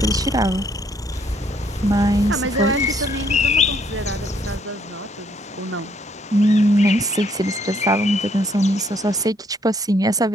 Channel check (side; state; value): both; normal; correlation 0.67